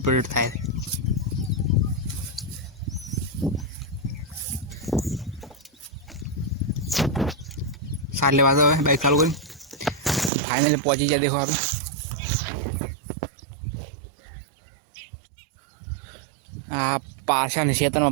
थाय। साले वाला है बाइक चालू करी फाइनली पहुंची गया। देखो आप पाछा क्षेत्र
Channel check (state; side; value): drops out; left; at 10.3 s